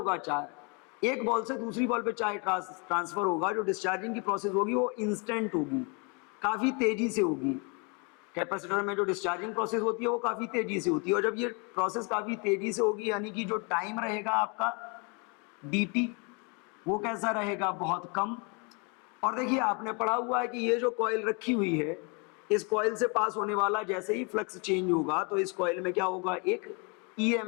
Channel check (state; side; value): quieter; right; 33.6 dB